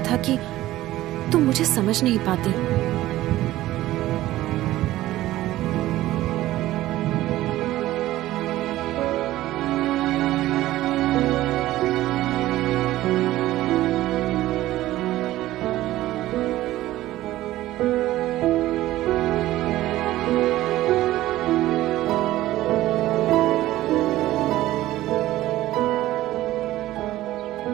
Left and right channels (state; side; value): quieter; left; 15.5 dB